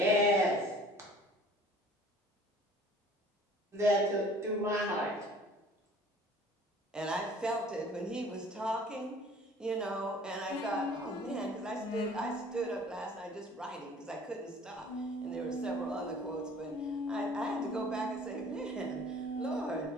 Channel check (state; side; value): normal; both; correlation 0.50